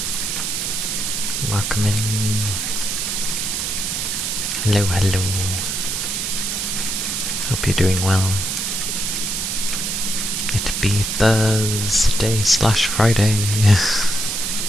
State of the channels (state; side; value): noise; right; hiss, 1 dB below the sound